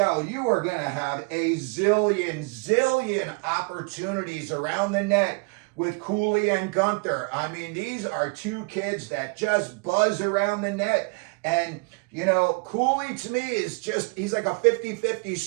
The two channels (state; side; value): quieter; left; 31.7 dB